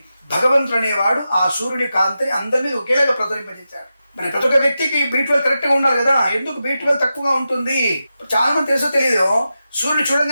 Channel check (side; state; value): both; inverted; correlation -0.91